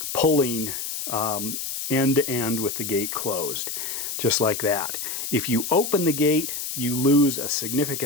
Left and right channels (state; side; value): noise; left; hiss, 5 dB below the sound